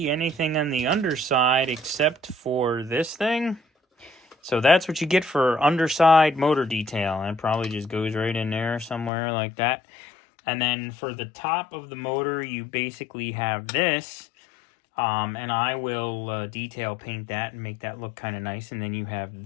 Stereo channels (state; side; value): drops out; right; at 9.1 s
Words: anything on the underside except for this thing. So that's what you get for underside motor detail. And it probably just goes right in there somewhere like that. And then for the top of the motor, you basically have this. And I will detail paint that and make that look kind of nice. And then you have